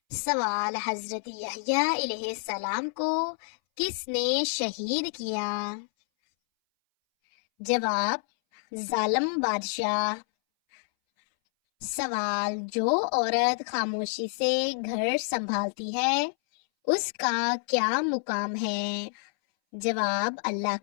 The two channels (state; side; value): silent; right; 59 dB below the other